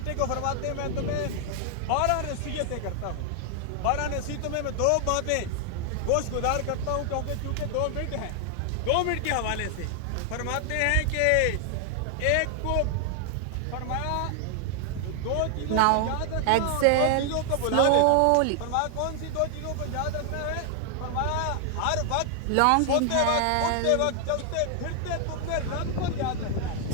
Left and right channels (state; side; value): different; both; correlation 0.00